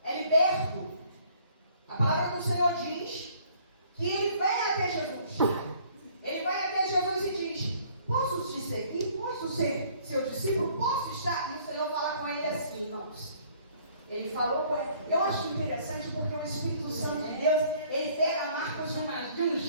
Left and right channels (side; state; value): both; inverted; correlation -0.59